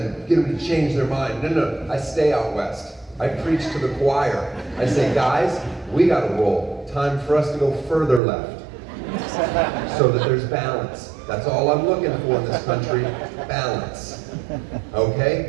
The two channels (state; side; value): drops out; left; at 8.2 s